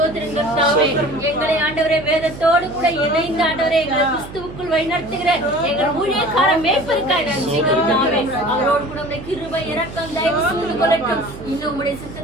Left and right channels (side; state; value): right; noise; hum, 14 dB below the sound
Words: எங்களை ஆண்டவரே வேதத்தோடு கூட இணைந்து ஆண்டவரே எங்களை கிறிஸ்துவுக்குள் வழிநடத்துகிற எங்கள் ஊழியக்கார மேய்ப்பருக்காய் நன்றி கர்த்தாவே. அவரோடு கூட உடைய கிருபை இரக்கம் தயவு சூழ்ந்து கொள்ளட்டும். இன்னும் உடைய